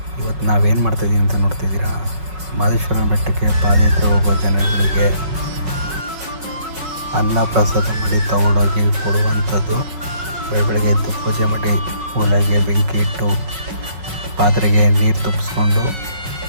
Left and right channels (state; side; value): late; left; 5.4 ms